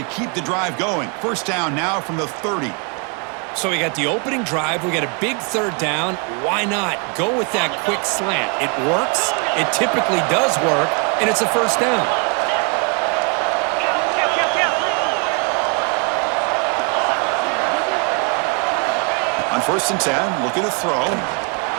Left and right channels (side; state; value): left; quieter; 35.9 dB